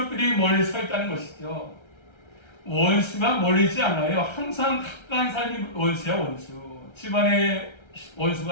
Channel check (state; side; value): late; right; 1.3 ms